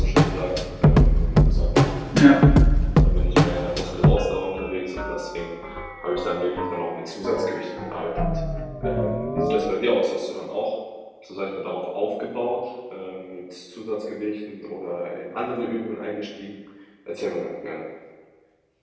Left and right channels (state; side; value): identical; both; correlation 1.00